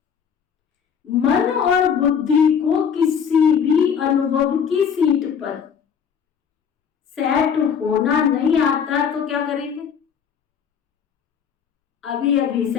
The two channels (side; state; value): right; quieter; 7.3 dB